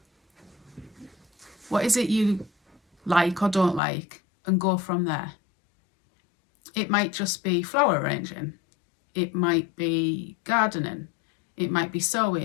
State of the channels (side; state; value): right; drops out; at 3.8 s